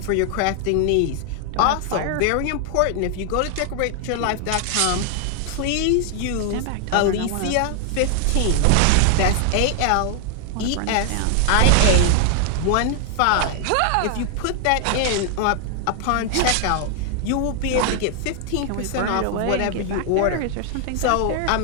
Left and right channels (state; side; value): different; both; correlation 0.00